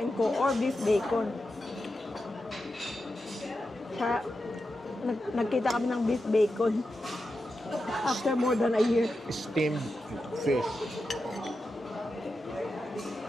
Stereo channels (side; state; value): both; normal; correlation 0.89